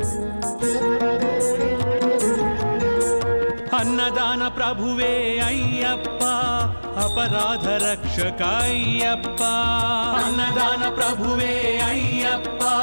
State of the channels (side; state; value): both; inverted; correlation -1.00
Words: అన్నదాన ప్రభువే అయ్యప్ప అపరాధ రక్షక అయ్యప్ప అన్నదాన ప్రభువే అయ్యప్ప